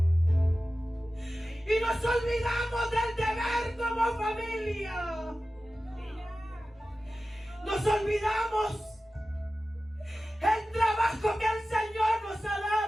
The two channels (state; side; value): normal; both; correlation 0.95